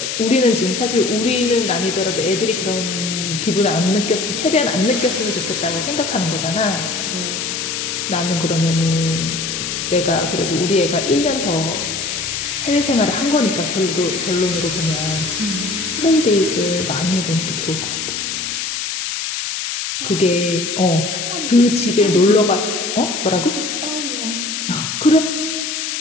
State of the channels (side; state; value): left; noise; hiss, 3 dB below the sound